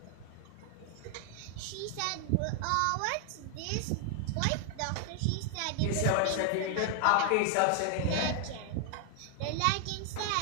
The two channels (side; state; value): both; different; correlation 0.00